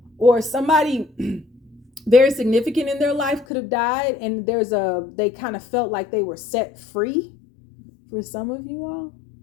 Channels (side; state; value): right; drops out; at 3.5 s